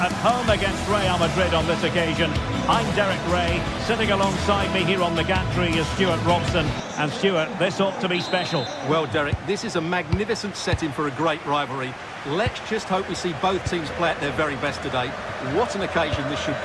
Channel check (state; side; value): identical; both; correlation 1.00